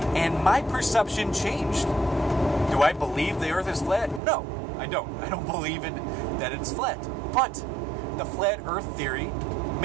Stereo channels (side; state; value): left; drops out; at 4.2 s